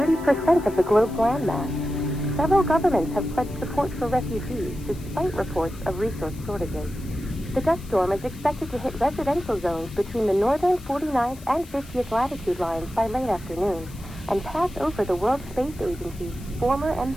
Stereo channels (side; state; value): left; noise; hiss, 21 dB below the sound